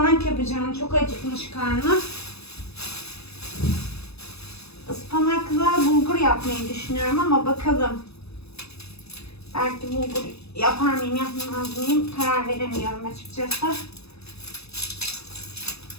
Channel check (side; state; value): right; late; 0.79 ms